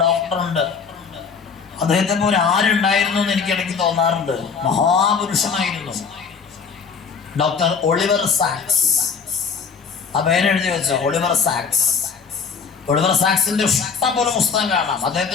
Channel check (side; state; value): right; quieter; 5.8 dB